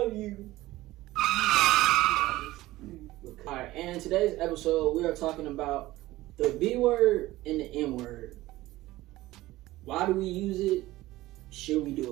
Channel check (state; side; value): quieter; left; 17.3 dB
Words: you. Alright, and in today's episode, we are talking about the B word and the N word. Why do we use it? Should we